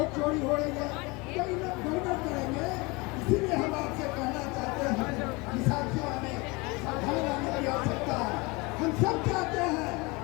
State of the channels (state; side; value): quieter; right; 25.7 dB